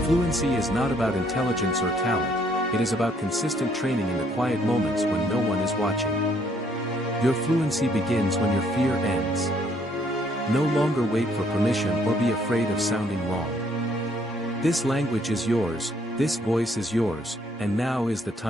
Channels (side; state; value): both; normal; correlation 0.66